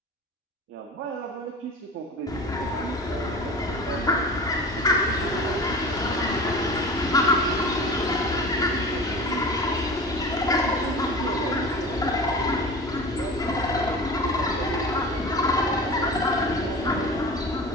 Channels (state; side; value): normal; both; correlation 0.35